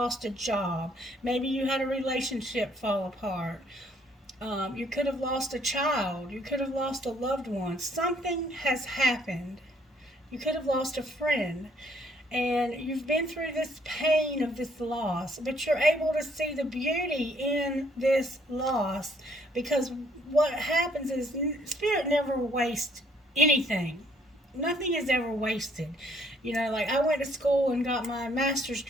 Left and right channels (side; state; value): both; normal; correlation 0.65